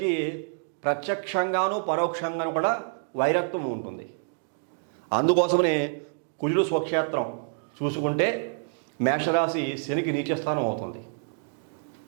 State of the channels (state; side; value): silent; left; 60 dB below the other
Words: ప్రత్యక్షంగాను పరోక్షంగాను కూడా వైరత్వం ఉంటుంది. అందుకోసమనే కుజుడు స్వక్షేత్రం చూసుకుంటే మేషరాశి శనికి నీచస్థానం అవుతుంది.